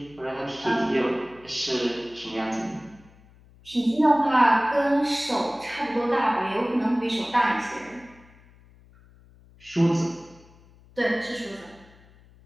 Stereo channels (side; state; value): left; noise; hum, 26 dB below the sound